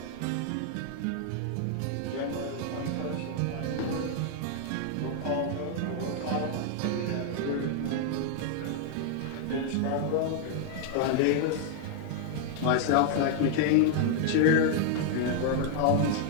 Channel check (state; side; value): different; both; correlation 0.00